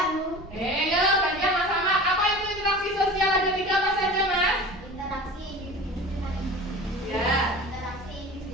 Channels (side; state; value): both; normal; correlation 0.37